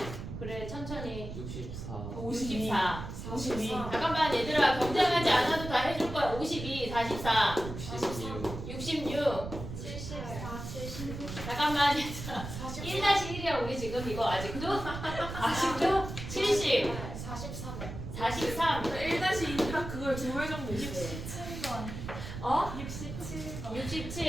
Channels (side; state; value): right; noise; rumble, 8 dB below the sound